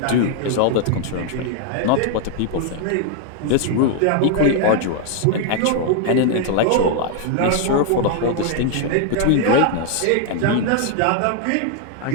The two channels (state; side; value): different; both; correlation 0.00